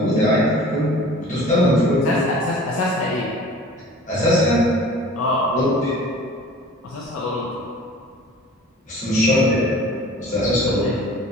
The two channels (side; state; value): both; normal; correlation 0.45